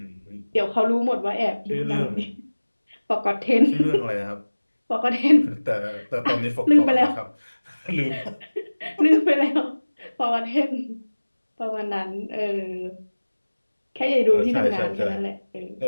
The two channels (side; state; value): both; inverted; correlation -1.00